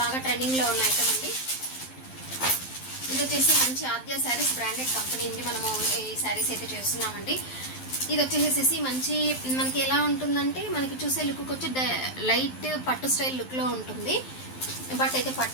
ట్రెండింగ్లో ఉన్న ఐటమ్ అండి. ఇది వచ్చేసి మంచి ఆద్య శారీస్ బ్రాండెడ్ కంపెనీ అండి. మనము ఈ శారీస్ అయితే చేస్తున్నామండి. ఇది వచ్చేసేసి మంచి మనకి ఎలా ఉంటుందంటే, మనకి చూసే లుక్ వచ్చి లైట్ పట్టు స్టైల్ లుక్లో ఉంటుంది. బట్ అయితే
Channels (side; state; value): right; late; 12 ms